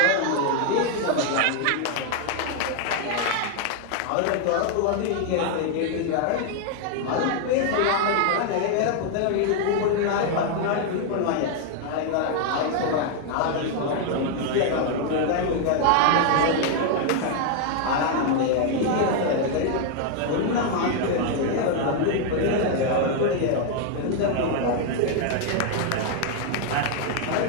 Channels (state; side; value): different; both; correlation 0.00